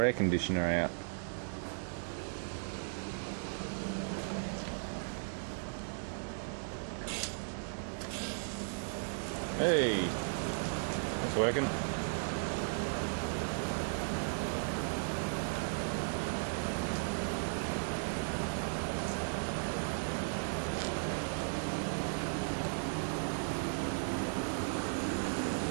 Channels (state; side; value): silent; left; digital silence